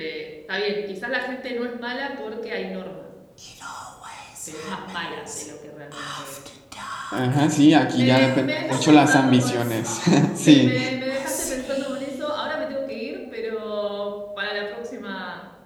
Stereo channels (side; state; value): both; identical; correlation 1.00